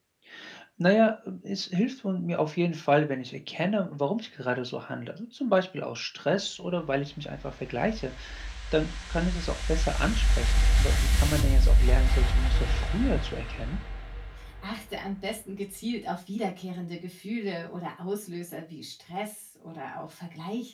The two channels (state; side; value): identical; both; correlation 1.00